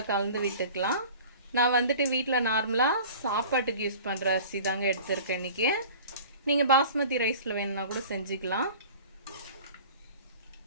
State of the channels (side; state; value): both; inverted; correlation -0.43